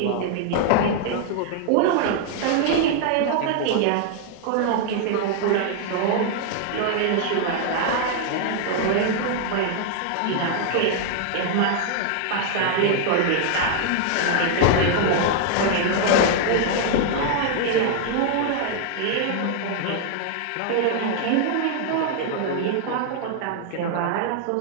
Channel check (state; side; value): different; both; correlation 0.00